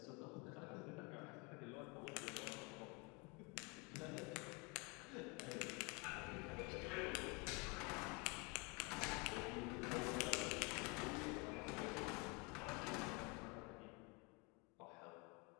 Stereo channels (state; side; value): quieter; right; 29.9 dB